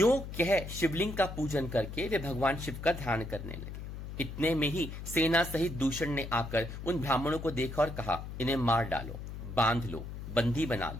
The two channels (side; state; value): left; noise; hum, 9 dB below the sound